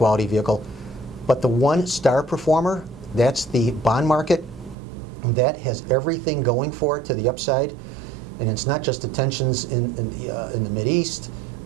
vehicle. But the one star performer, that's the bond market. That has everything going for it to the upside. And it's not just the tensions in the Mideast,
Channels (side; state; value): left; drops out; at 4.8 s